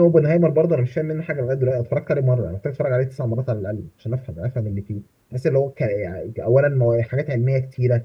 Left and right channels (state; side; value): identical; both; correlation 1.00